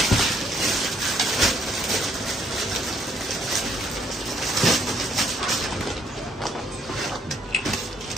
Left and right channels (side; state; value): both; normal; correlation 0.68